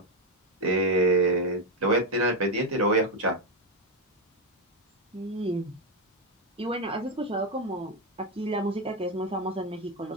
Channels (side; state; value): both; normal; correlation 0.06